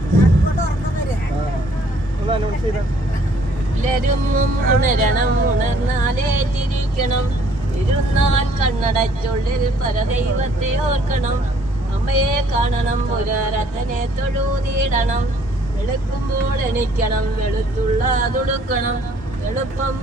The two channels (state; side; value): normal; both; correlation 0.61